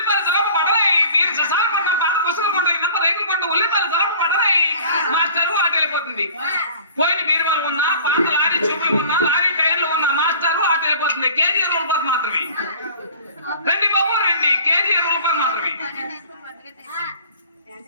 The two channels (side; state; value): both; inverted; correlation -0.46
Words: సలపు పడరాయి, మీరు ససాలు కొంటాం, పాత పుస్తకాలు కొంటాం, ఇన్నంత రైతులు కొంటాం, ఉల్లిపాయలు సలపు పడరాయి. మాస్టరు అటు వెళ్ళిపోతుంది. పోయిన బీరువాలు ఉన్నా, పాత లారీ చూపులు ఉన్నా, లారీ టైర్లు ఉన్నా, మాస్టరు అటు వెళ్ళిపోతుంది. కేజీ 20 రూపాయలు మాత్రమే. రండి బాబు రండి, కేజీ 20 రూపాయలు మాత్రమే.